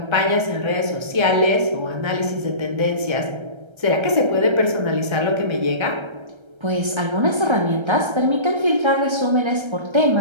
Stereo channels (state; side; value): late; left; 1.3 ms